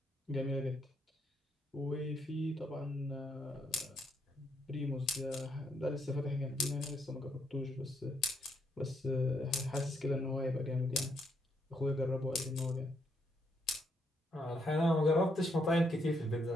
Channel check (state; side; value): normal; both; correlation 0.75